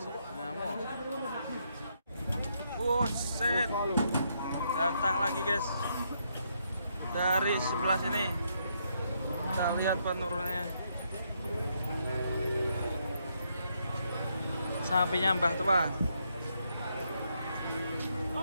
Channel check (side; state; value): both; inverted; correlation -0.76